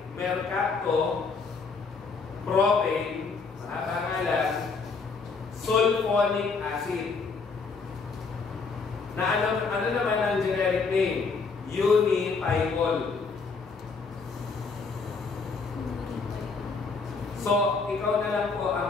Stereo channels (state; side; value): quieter; right; 4.6 dB